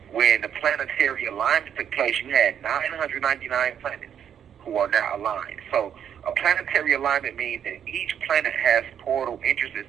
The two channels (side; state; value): left; quieter; 8.9 dB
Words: when the planetary alignment took place, you had 999 planets who are now aligned. So a planetary alignment means that each planet has portal entrances